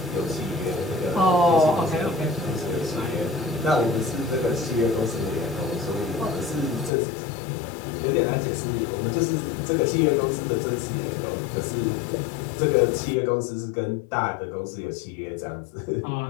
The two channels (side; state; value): right; drops out; at 6.9 s